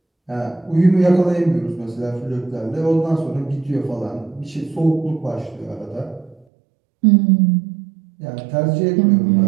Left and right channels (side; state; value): left; drops out; at 6.5 s